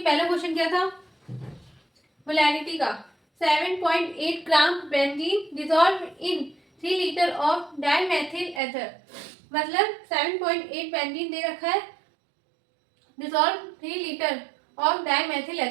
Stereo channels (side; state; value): left; drops out; at 8.6 s